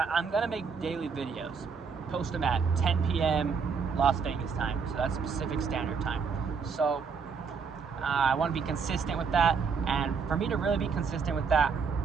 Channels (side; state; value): left; quieter; 5.7 dB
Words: I'm gonna make daily videos, post them at 10 p.m. Las Vegas time, so that's Pacific Standard Time. So I want to be consistent with that, and for me to really be consistent with that,